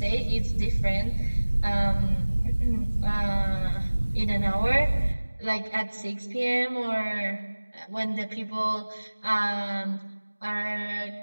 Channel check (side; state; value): both; inverted; correlation -1.00